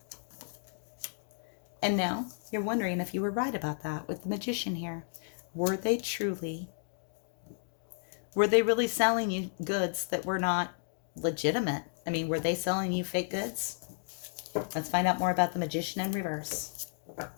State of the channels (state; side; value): silent; right; digital silence